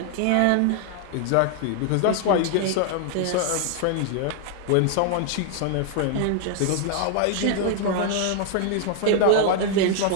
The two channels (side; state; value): both; different; correlation 0.00